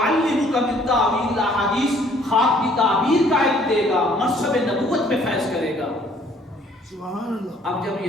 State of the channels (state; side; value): normal; both; correlation 0.60